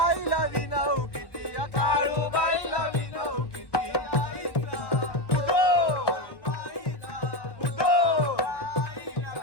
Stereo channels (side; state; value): right; late; 1.1 ms